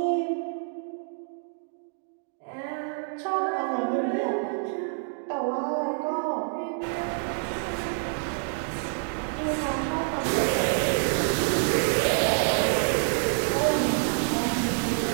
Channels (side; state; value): left; silent; 60 dB below the other